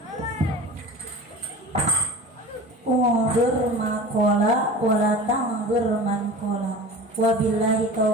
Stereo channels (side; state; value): both; normal; correlation 0.37